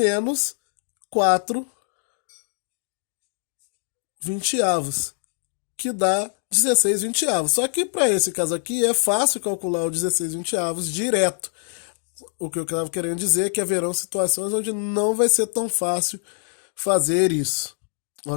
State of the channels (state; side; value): silent; right; digital silence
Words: 4 vinte-avos, que dá 16 vinte-avos. Só que para esse caso aqui é fácil calcular o 16 vinte-avos direto. O que eu estava querendo dizer é que haverão situações onde não vai ser tão fácil fazer isso,